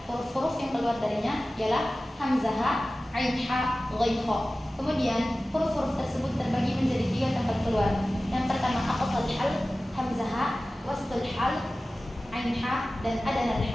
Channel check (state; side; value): normal; both; correlation 0.96